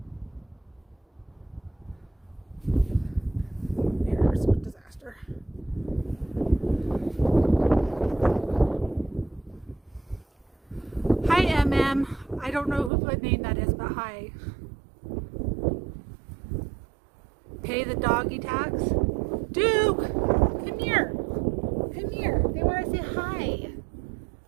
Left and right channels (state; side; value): drops out; left; at 12.9 s